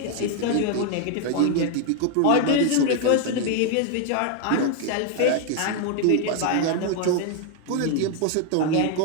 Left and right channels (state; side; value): different; both; correlation 0.00